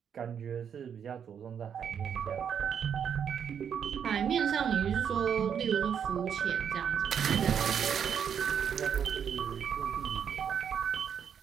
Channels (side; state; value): left; quieter; 7.9 dB